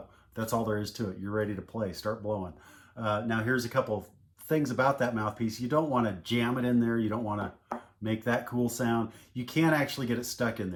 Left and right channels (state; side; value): identical; both; correlation 1.00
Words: all there is to it. You're ready to play. Start blowing. Now here's a couple of things about that mouthpiece. You don't want to jam it in there. You don't want to make that cool sound. You can't actually get it stuck in